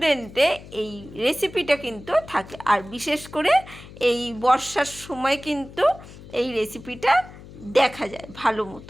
এই রেসিপিটা কিন্তু থাকে। আর বিশেষ করে এই বর্ষার সময় কিন্তু এই রেসিপিটা দেখা যায় ভালো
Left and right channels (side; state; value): left; noise; hum, 17 dB below the sound